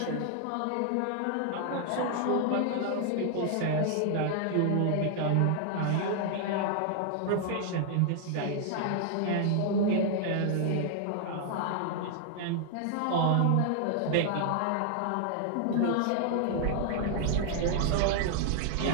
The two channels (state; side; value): different; both; correlation 0.00